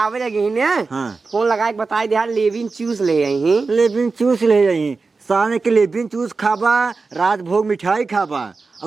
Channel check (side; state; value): left; quieter; 4.2 dB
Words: लगी ने हाँ फोन लगा के बता दे लेविन चूस ले आई लेबिन चूस ले जाई साने के लेबिन चूस खाबा, राजभोग मिठाई खाबा